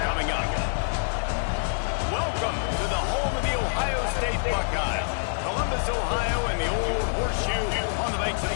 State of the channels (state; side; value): silent; right; digital silence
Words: coming up. Welcome to the home of the Ohio State Buckeyes. Columbus, Ohio, and the old horseshoe on the banks of